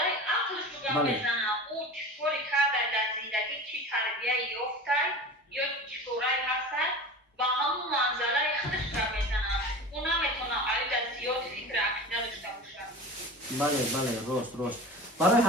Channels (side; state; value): both; normal; correlation 0.33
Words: ақлш гап мезанад. ӯ чӣ коре карда дар зиндагӣ, чӣ тарбия ёфта ё чӣ корае ҳастад, ба ҳамон манзалаи худаш гап мезанад. ӯ наметавонад айда зиёд фикри ақида дошта бошад. бале, рост. барои